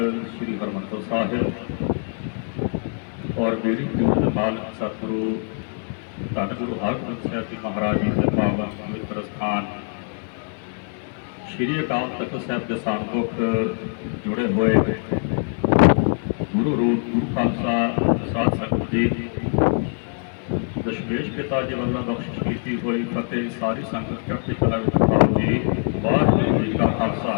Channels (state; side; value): silent; right; 58 dB below the other